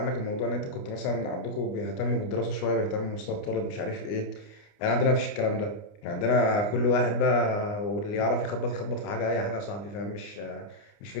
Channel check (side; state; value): right; late; 29 ms